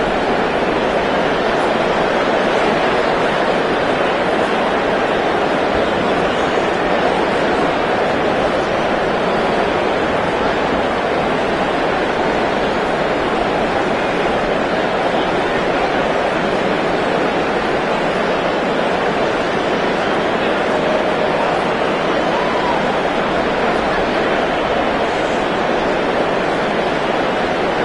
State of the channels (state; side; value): identical; both; correlation 1.00